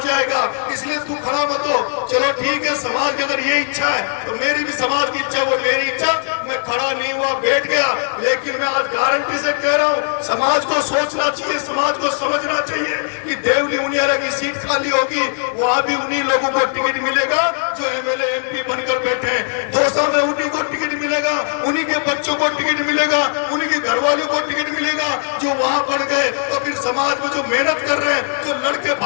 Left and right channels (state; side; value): silent; right; 67 dB below the other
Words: इसलिए तू खड़ा मत हो। चलो ठीक है, समाज की अगर ये इच्छा है तो मेरी भी समाज की इच्छा, वो मेरी इच्छा, मैं खड़ा नहीं हुआ, बैठ गया। लेकिन मैं आज गारंटी से कह रहा हूँ, समाज को सोचना चाहिए, समाज को समझना चाहिए कि देवली उनियारा की सीट खाली होगी, वहां भी उन्हीं लोगों को टिकट मिलेगा जो एमएलए एमपी बनकर बैठे हैं। दौसा में उन्हीं को टिकट मिलेगा, उन्हीं के बच्चों को टिकट मिलेगा, उन्हीं के घर वालों को टिकट मिलेगा जो वहां बढ़ गए। तो फिर समाज में जो मेहनत कर रहे हैं, जो लड़के